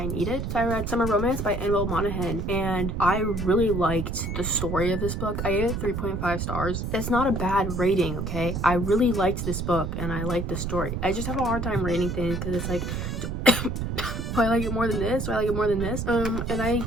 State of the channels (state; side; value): noise; right; rumble, 3 dB below the sound